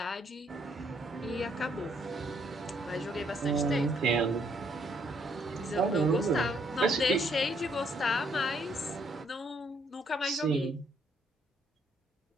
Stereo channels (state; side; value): normal; both; correlation 0.70